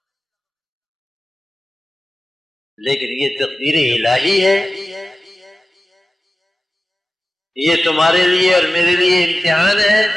لیکن یہ تقدیر الہی ہے، یہ تمہارے لیے اور میرے لیے امتحان ہے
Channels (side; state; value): both; normal; correlation 0.95